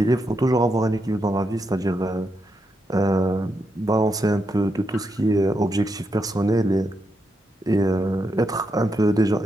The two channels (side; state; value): both; normal; correlation 0.83